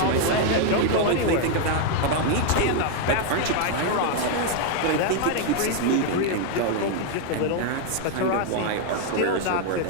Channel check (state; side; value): different; both; correlation 0.00